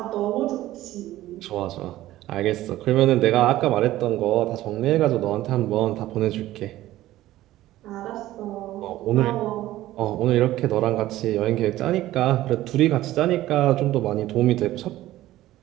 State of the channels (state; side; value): quieter; left; 15.2 dB